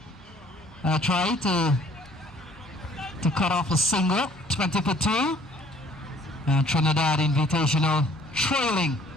try to cut off a single, 20 for 2. Trinidad Invitational trailing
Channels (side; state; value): both; normal; correlation 0.57